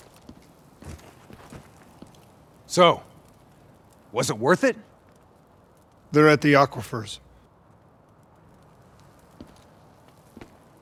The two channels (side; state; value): both; identical; correlation 1.00